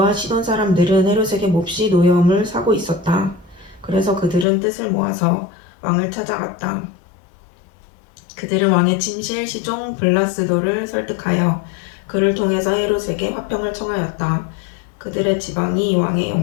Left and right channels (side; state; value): right; drops out; at 4.5 s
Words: 시돈 사람들은 헤롯에게 몹시 노여움을 사고 있었다. 그래서 그들은 뜻을 모아서 왕을 찾아갔다. 그들은 왕의 침실 시종 블라스도를 설득하여 그를 통해서 헤롯에게 화평을 청하였다. 그들의 지방이 왕의